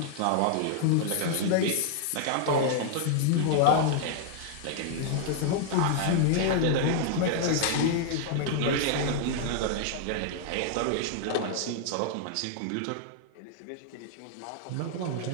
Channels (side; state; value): both; different; correlation 0.00